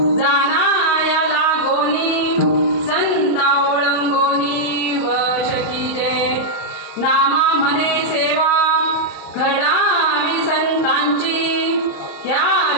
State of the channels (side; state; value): right; late; 34 ms